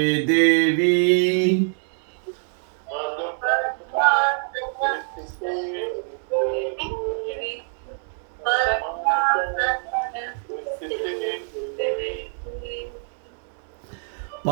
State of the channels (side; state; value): left; silent; 61 dB below the other